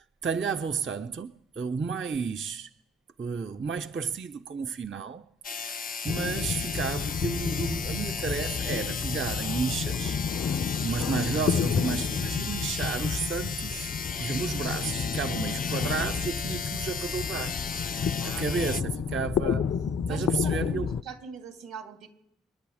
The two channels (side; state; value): both; normal; correlation 0.57